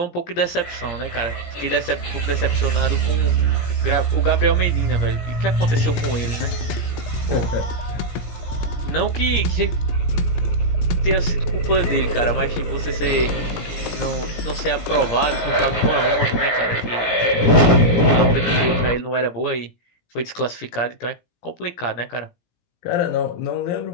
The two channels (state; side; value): late; right; 17 ms